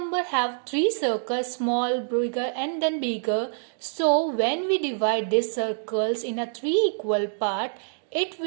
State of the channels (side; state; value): left; silent; digital silence